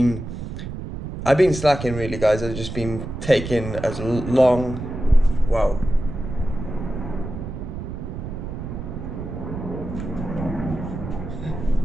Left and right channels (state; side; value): noise; right; rumble, 7 dB below the sound